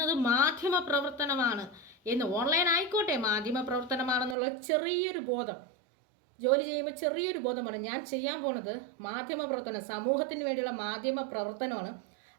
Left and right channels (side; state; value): left; drops out; at 4.4 s